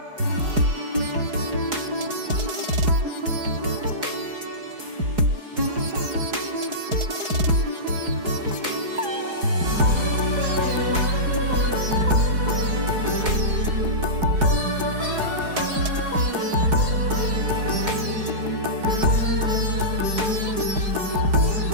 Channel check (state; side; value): late; left; 4.8 ms